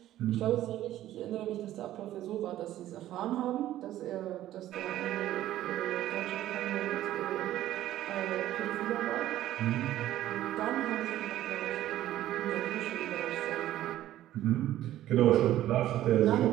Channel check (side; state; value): left; quieter; 13.5 dB